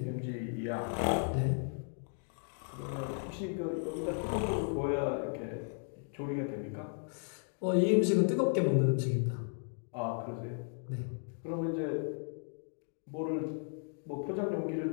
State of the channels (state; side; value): silent; right; 54 dB below the other